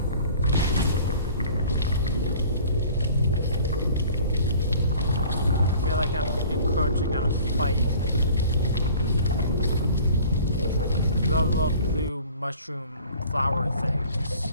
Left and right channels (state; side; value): inverted; both; correlation -0.48